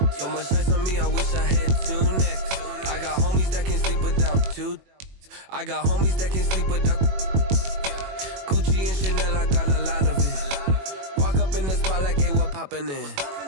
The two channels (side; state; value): left; late; 21 ms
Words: So much ice on me, I wish I had 2 necks. I got homies that can sleep without 2. I got homies that can sleep without Gucci and Chanel, I got a lot of it. Walk up in the spot like, hey, what poppin' in?